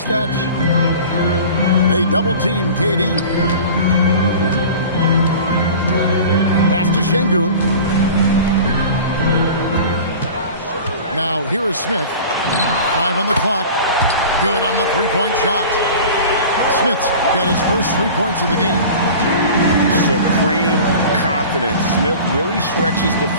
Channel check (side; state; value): both; inverted; correlation -0.39